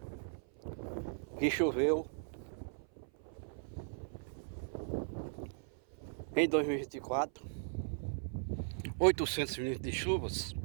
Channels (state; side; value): silent; left; 52 dB below the other